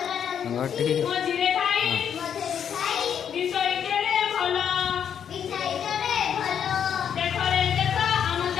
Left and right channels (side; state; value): right; quieter; 8.4 dB